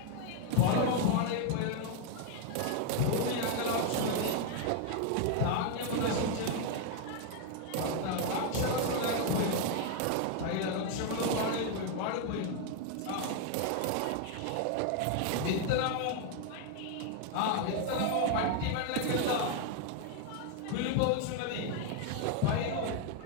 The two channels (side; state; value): both; different; correlation 0.01